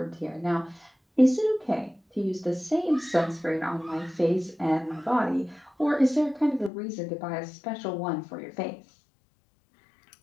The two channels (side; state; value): right; drops out; at 6.7 s